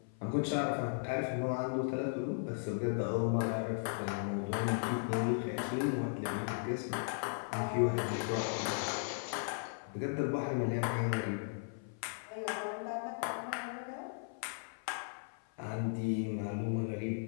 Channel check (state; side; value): silent; right; 53 dB below the other